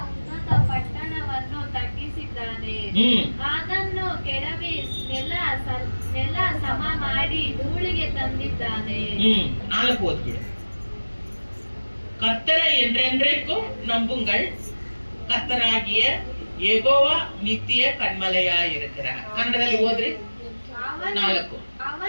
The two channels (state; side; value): inverted; both; correlation -1.00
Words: ಉನ್ನತ ಪಟ್ಟಣವನ್ನು ತಗ್ಗಿಸಿದ್ದಾನೆ. ಅದನ್ನು ಕೆಡವಿ ನೆಲ ಸಮ ಮಾಡಿ ಧೂಳಿಗೆ ತಂದಿದ್ದಾನೆ. 4 ಓದ್ಬಿಡು. கர்த்தரை என்றென்றைக்கும் நம்புங்கள், கர்த்தராகிய யெகோவா நித்திய கண்மலையாயிருக்கிறார். ಕನ್ನಡದಲ್ಲಿ ಓದ್ರಿ. 4